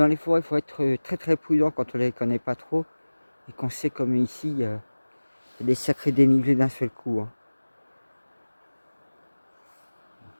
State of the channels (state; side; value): inverted; both; correlation -1.00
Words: les forêts, il faut être très très prudent quand on les connaît pas trop. Et qu'on sait comme ici, il y a des sacrés dénivelés d'un seul coup. Hein.